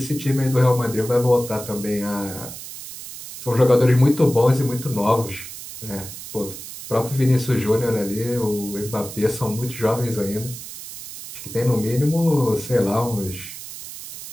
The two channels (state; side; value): noise; right; hiss, 12 dB below the sound